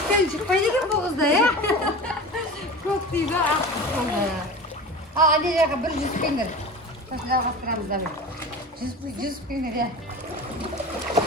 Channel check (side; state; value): both; normal; correlation 0.33